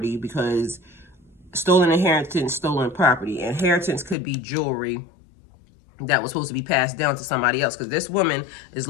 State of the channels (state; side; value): drops out; right; at 4.2 s